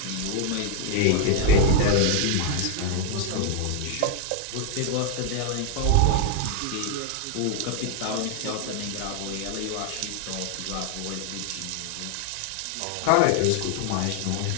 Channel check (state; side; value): different; both; correlation 0.01